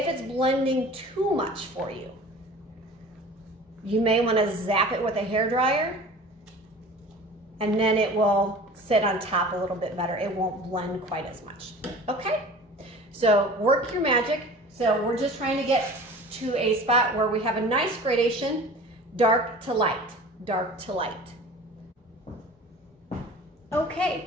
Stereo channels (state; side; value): normal; both; correlation 0.41